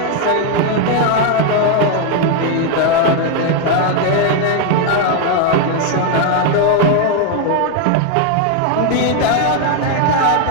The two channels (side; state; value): both; different; correlation 0.01